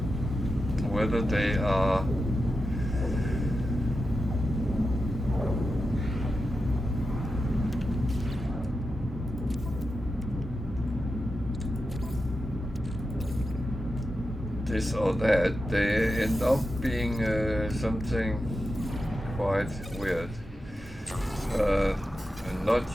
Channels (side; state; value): both; normal; correlation 0.90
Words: Whether they are this or that, they end up being something quite weird and